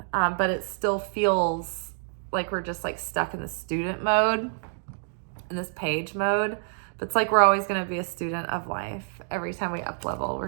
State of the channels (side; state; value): left; silent; digital silence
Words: But it still feels like we're just like stuck in the student mode, in this page mode. But it's like we're always going to be a student of life. Every time we up level,